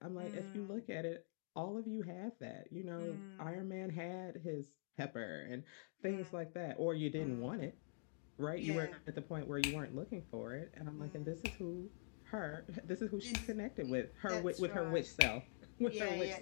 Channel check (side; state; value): right; silent; digital silence